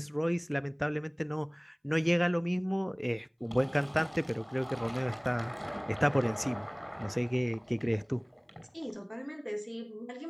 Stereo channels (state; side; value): identical; both; correlation 1.00